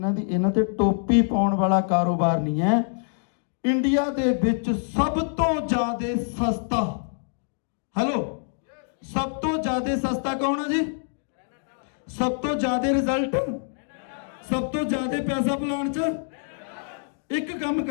ਤੇ ਟੋਪੀ ਪਾਉਣ ਵਾਲਾ ਕਾਰੋਬਾਰ ਨਹੀਂ ਹੈ। ਇੰਡੀਆ ਦੇ ਵਿੱਚ ਸਭ ਤੋਂ ਜ਼ਿਆਦਾ ਸਸਤਾ, ਹੈਲੋ, ਸਭ ਤੋਂ ਜ਼ਿਆਦਾ ਸਸਤਾ ਕੌਣ ਆ ਜੀ? ਸਭ ਤੋਂ ਜ਼ਿਆਦਾ ਰਿਜ਼ਲਟ, ਸਭ ਤੋਂ ਜ਼ਿਆਦਾ ਪੈਸਾ ਪਲਾਨ 'ਚ। ਇੱਕ ਕੰਮ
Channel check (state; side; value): silent; right; digital silence